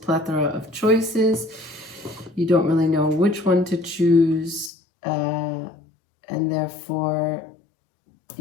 of choices. You don't really know which one to choose. And therefore,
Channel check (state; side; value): drops out; right; at 4.7 s